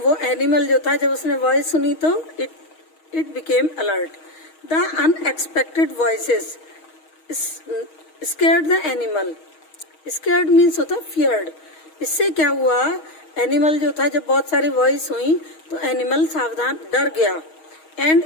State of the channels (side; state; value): right; late; 6.3 ms